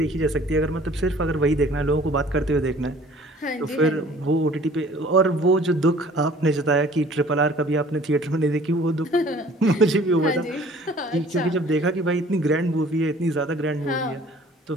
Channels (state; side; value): normal; both; correlation 0.52